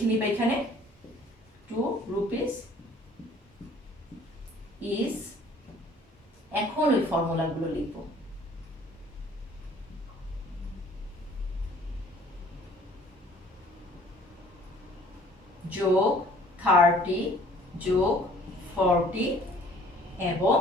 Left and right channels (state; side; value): normal; both; correlation 0.55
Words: নিবে এখানে, 2 rupees is, এখন ওই ফর্মুলাগুলো লিখব। যোগ 30 যোগ 40 এবং